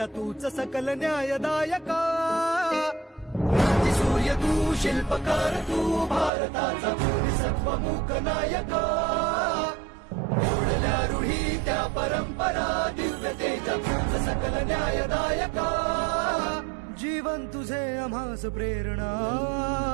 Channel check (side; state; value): left; drops out; at 6.3 s